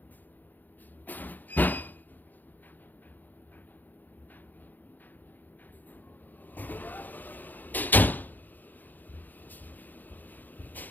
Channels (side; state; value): right; late; 0.085 ms